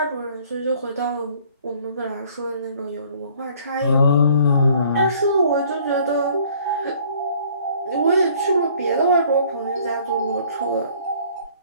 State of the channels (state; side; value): inverted; both; correlation -0.57